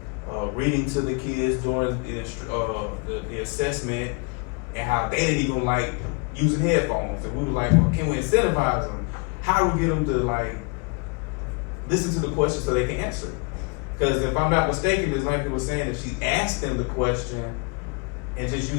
reading to the kids during the assessment, and how they didn't even like using headphones. And we were like, well, can we incentivize them? How do we get them to listen to the question so they can answer it? Because if I'm not mistaken, Ms. Lampkin was saying if she asked them the question and just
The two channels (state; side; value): quieter; right; 33.1 dB